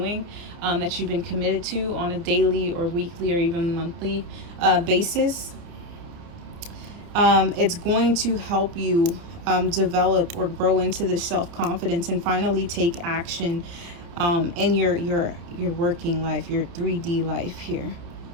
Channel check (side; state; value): left; late; 29 ms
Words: that you've been committed to on a daily or weekly or even monthly basis. It's going to help you develop or grow into this self-confidence and finally take action in your working life, your 3D life here.